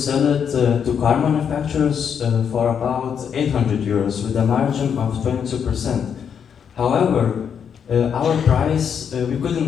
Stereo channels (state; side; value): quieter; right; 7.5 dB